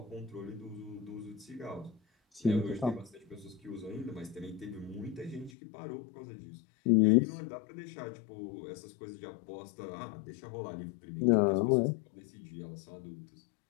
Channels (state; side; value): drops out; right; at 5.5 s